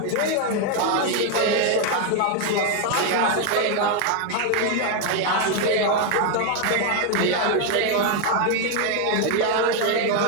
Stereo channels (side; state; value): both; different; correlation 0.01